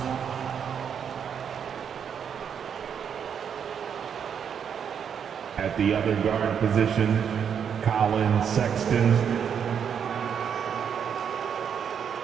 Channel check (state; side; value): quieter; left; 7.7 dB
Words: At the other guard position, Colin Sexton.